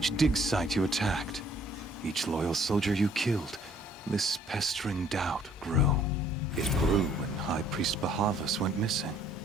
dig site you attacked, each loyal soldier you killed, this pestering doubt grew. It grew when High Priest Bahavas went missing,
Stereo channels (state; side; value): normal; both; correlation 0.60